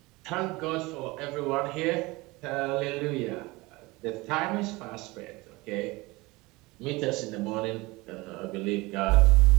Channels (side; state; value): left; quieter; 22.7 dB